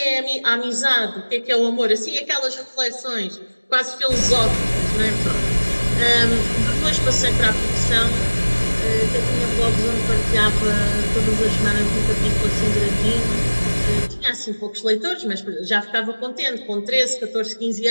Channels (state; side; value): inverted; both; correlation -1.00